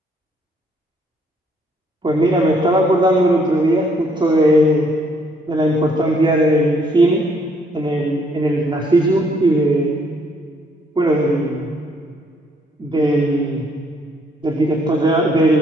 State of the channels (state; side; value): normal; both; correlation 0.67